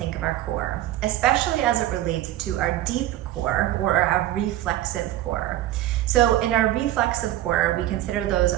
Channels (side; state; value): left; quieter; 14.1 dB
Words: of our core, especially as it relates to our deep core or our reflexive core. So in our reflexive core, we consider those